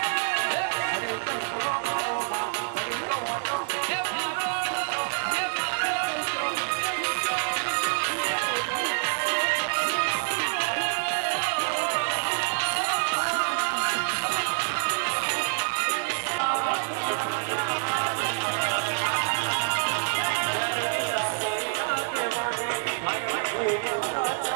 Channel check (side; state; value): left; silent; digital silence